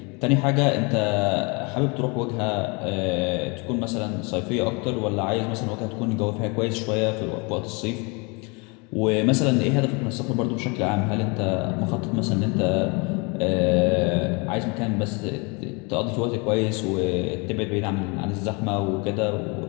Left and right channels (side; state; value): right; quieter; 30.5 dB